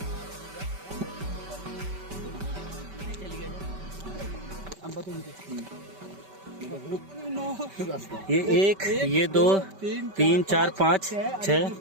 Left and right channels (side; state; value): left; late; 5.2 ms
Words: ये 1, ये 2, 3, 4, 5,